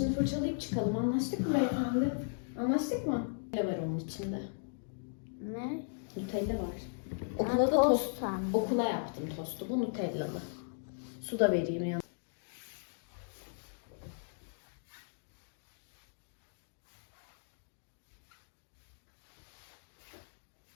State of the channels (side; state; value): right; silent; digital silence